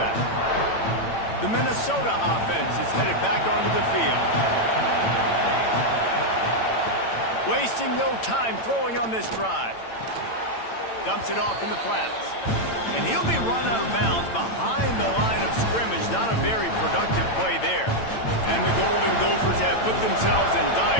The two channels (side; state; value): right; late; 8.9 ms